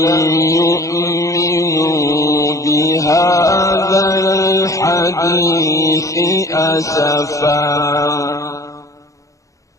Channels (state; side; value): late; right; 0.16 ms